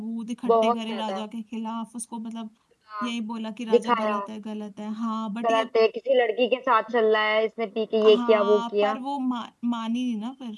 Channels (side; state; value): both; identical; correlation 1.00